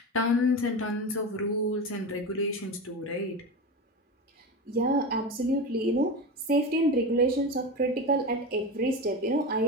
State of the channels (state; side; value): normal; both; correlation 0.23